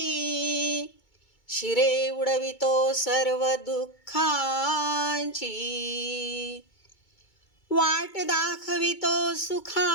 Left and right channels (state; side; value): late; right; 2.2 ms